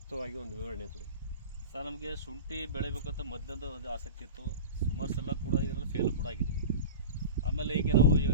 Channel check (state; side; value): inverted; both; correlation -0.30